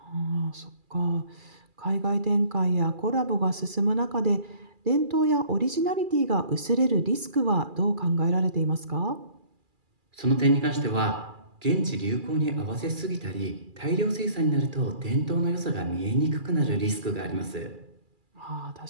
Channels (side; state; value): left; late; 2.4 ms